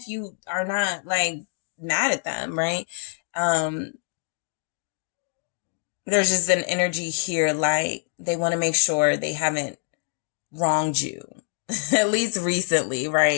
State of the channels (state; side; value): silent; right; digital silence